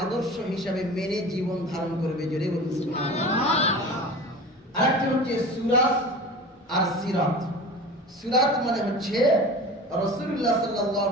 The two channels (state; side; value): normal; both; correlation 0.35